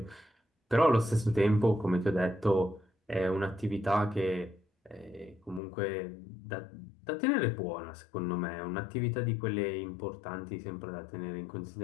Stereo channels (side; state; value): right; drops out; at 5.6 s